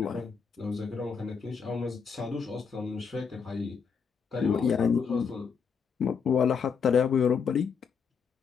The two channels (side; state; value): right; quieter; 6.1 dB